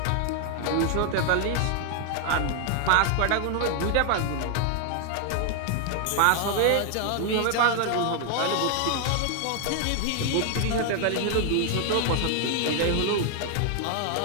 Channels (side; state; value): both; different; correlation 0.00